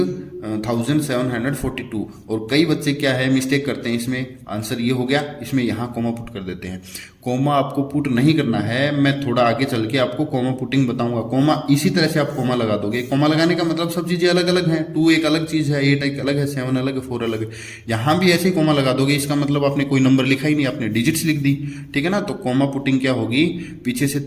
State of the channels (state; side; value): identical; both; correlation 1.00